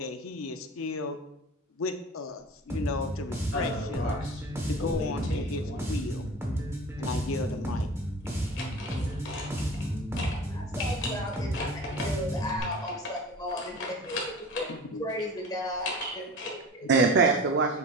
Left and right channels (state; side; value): normal; both; correlation 0.37